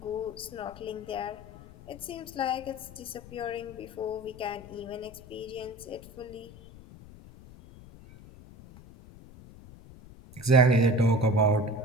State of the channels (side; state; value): left; noise; rumble, 19 dB below the sound